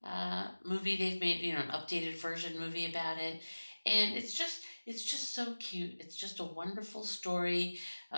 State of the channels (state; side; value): inverted; both; correlation -1.00